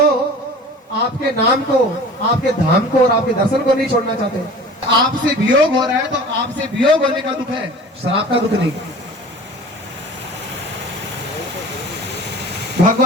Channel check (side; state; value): both; normal; correlation 0.41